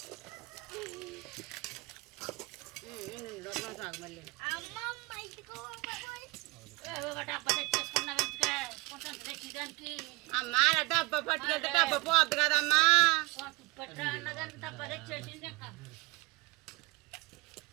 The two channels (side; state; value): left; quieter; 23.1 dB